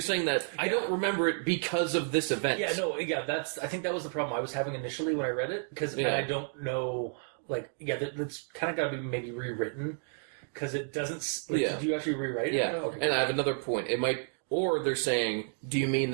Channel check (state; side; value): silent; left; 55 dB below the other